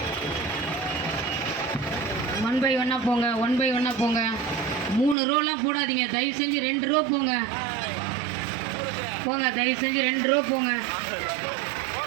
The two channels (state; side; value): drops out; left; at 5.2 s